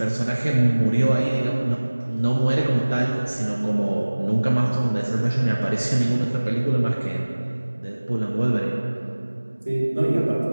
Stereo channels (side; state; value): both; inverted; correlation -1.00